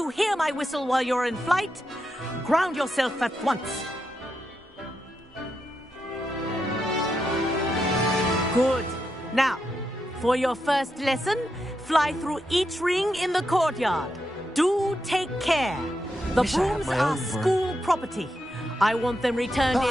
hear my whistle while you're in flight, ground yourself at once. Good. Now, for your first lesson, fly through each ring in the courtyard. Do take care. The brooms are school property. I want them returned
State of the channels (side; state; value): both; normal; correlation 0.85